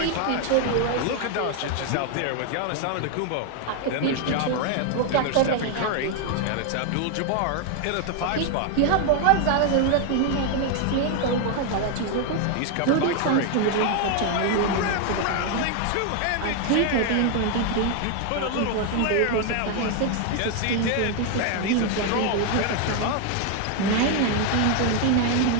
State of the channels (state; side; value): different; both; correlation 0.01